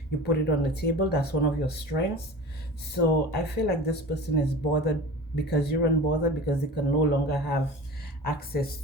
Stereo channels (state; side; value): normal; both; correlation 0.36